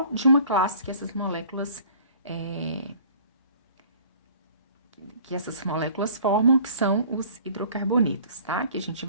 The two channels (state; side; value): inverted; both; correlation -0.50